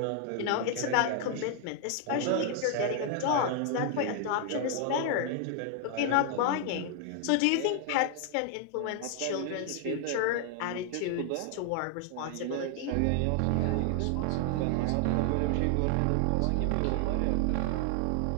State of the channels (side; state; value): both; different; correlation 0.00